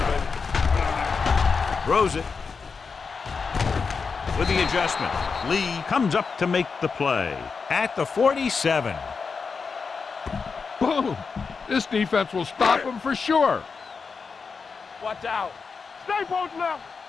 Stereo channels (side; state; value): right; quieter; 5.1 dB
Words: Throws it. With the adjustment, Lee comes up to make the play at the 47. Boom! This defense will stop him for sure. Watch out. Stay post left.